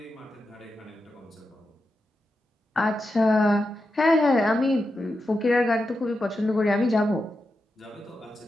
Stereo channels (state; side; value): normal; both; correlation 0.88